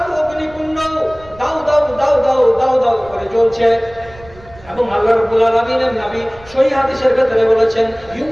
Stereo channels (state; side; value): noise; right; rumble, 22 dB below the sound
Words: অগ্নিকুণ্ড দাউ দাউ দাউ দাউ দাউ দাউ করে জ্বলছে। এবং আল্লাহ রাব্বুল আলামিনের নবী সহিহ হাদিসের ভিতরে বলেছেন,